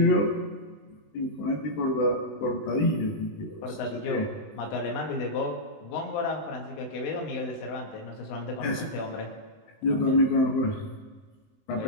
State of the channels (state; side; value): late; right; 20 ms